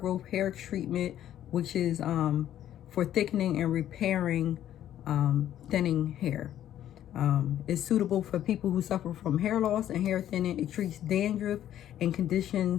hair treatment, which is for thickening and repairing thinning hair. It's suitable for people who suffer from hair loss and hair thinning. It treats dandruff and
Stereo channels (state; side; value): quieter; right; 11.5 dB